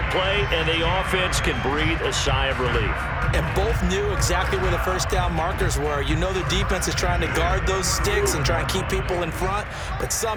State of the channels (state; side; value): identical; both; correlation 1.00